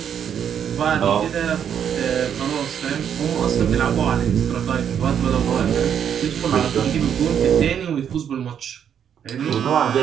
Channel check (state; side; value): quieter; left; 8.6 dB